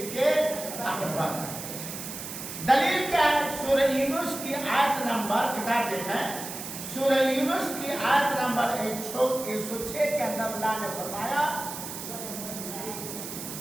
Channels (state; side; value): noise; right; hiss, 8 dB below the sound